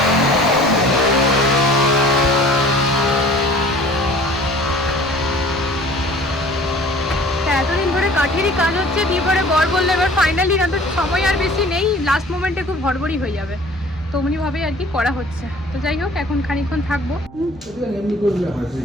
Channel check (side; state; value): both; normal; correlation 0.49